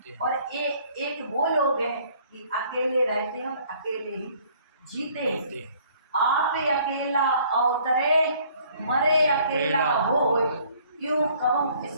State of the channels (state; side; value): inverted; both; correlation -0.59